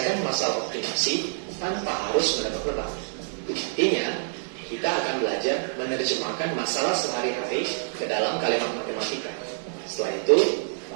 masalah optimasi tanpa harus menebak-nebak. Artinya, kita akan belajar menerjemahkan masalah sehari-hari ke dalam kalimat matematika. Setelah itu,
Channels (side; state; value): left; silent; 60 dB below the other